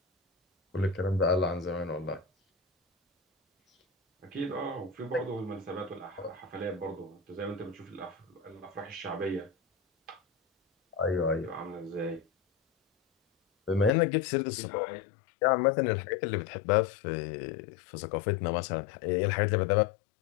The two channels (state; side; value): drops out; right; at 13.9 s